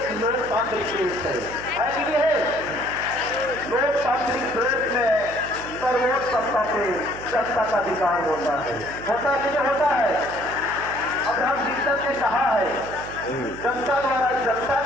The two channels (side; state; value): right; noise; hum, 14 dB below the sound